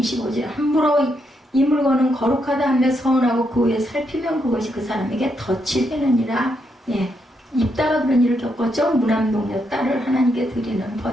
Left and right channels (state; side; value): normal; both; correlation 0.79